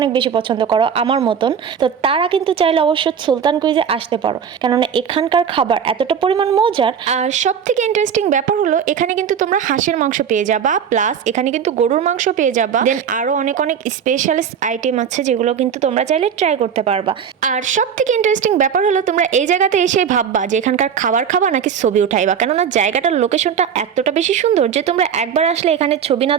বেশি পছন্দ করো আমার মতন, তো তারা কিন্তু চাইলে অবশ্যই সুলতান কুইজে আসতে পারো, কেননা এখানকার খাবার এতটা পরিমাণ মজার। আর সব থেকে ইন্টারেস্টিং ব্যাপার হলো এখানে কিন্তু তোমরা হাঁসের মাংস পেয়ে যাবা, প্লাস এখানে কিন্তু গরুর মাংস পেয়ে যাবা, দেন আরো অনেক অনেক স্পেশালিস্ট আইটেম আছে যেগুলো কিন্তু তোমরা চাইলে ট্রাই করতে পারবা। আর সব থেকে ইন্টারেস্টিং ব্যাপার হলো তোমরা এই জায়গাতে এসে ভাববা যে এখানকার খাবার খাবা নাকি ছবি উঠাইবা, কেননা জায়গাটার লোকেশনটা এতটা বেশি সুন্দর যে তোমরা একবার আসলে এখানে ছবি না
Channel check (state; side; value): quieter; left; 7.7 dB